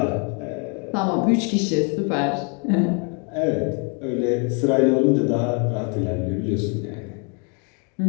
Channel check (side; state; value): right; quieter; 37.1 dB